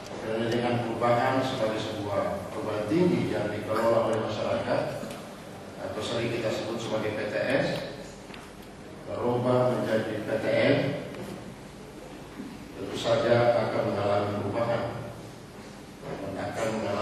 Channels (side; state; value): both; identical; correlation 1.00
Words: Karena dengan perubahan sebagai sebuah perguruan tinggi yang dikelola oleh masyarakat atau sering kita sebut sebagai PTS berubah menjadi PTN, tentu saja akan mengalami perubahan dan akan